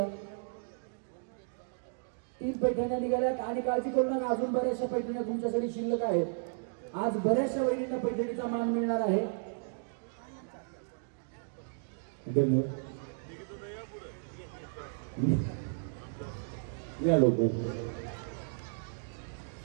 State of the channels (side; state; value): left; silent; digital silence